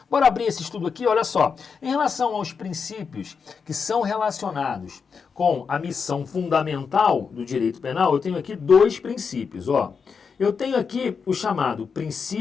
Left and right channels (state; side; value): quieter; right; 5.8 dB